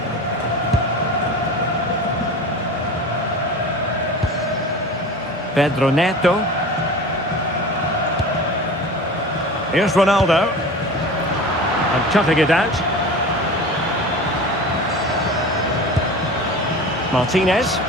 Pedro Neto. Here's Ronaldo. And cutting it out. Martinez.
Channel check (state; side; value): normal; both; correlation 0.35